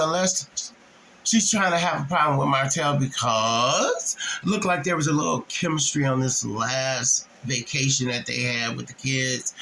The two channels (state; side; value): identical; both; correlation 1.00